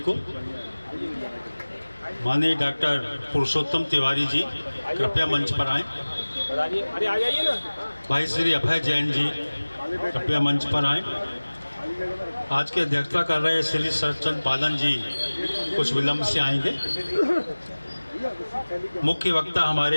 को। माननीय डॉक्टर पुरुषोत्तम तिवारी जी कृपया मंच पर आएं। अरे आ जाइए ना। भाई श्री अभय जैन जी कृपया मंच पर आएं। आज की अध्यक्षता कर रहे श्री सरचंद पालन जी कुछ विलंब से आएंगे। मुख्य वक्ता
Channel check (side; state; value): both; inverted; correlation -1.00